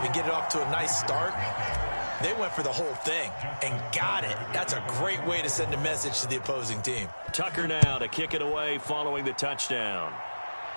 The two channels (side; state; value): both; inverted; correlation -1.00